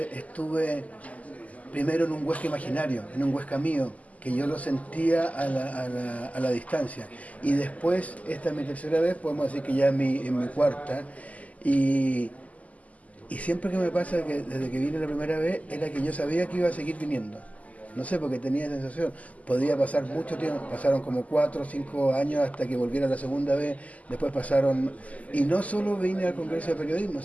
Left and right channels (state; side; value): late; right; 0.073 ms